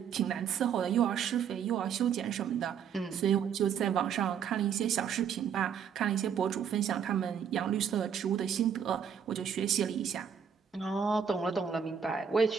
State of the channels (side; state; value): left; quieter; 7.7 dB